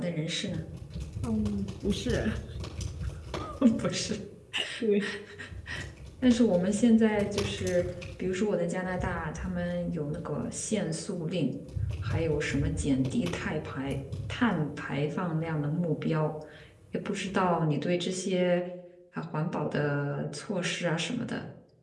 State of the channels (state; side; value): identical; both; correlation 1.00